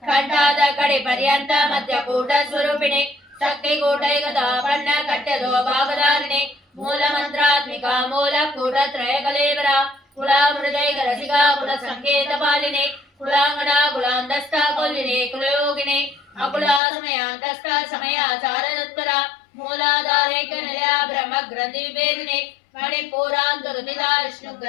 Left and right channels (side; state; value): right; drops out; at 16.8 s